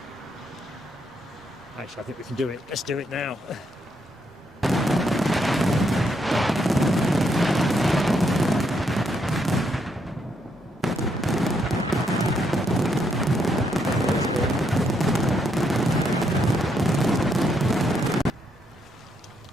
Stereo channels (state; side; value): normal; both; correlation 0.76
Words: Actually, I think we can do it. Let's do it now.